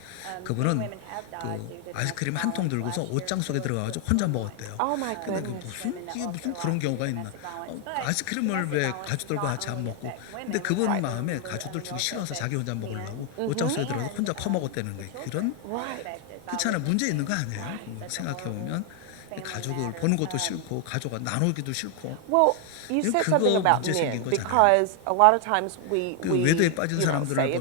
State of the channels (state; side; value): different; both; correlation 0.00